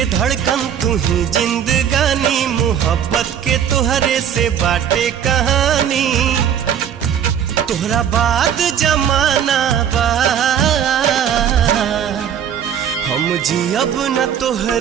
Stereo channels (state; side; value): quieter; left; 8.9 dB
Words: धड़कन, तू ही जिंदगानी। मोहब्बत के तोहरे से बाटे कहानी, तोहरा बाद जमाना बा। हम जियब न